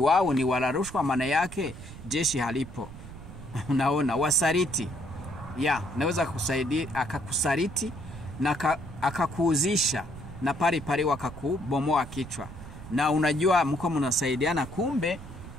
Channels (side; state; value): right; noise; rumble, 14 dB below the sound